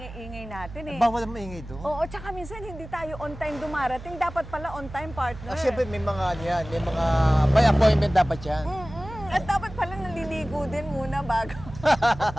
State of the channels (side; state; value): right; noise; hum, 14 dB below the sound